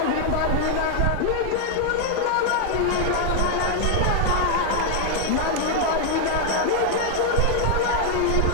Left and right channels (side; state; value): both; different; correlation 0.00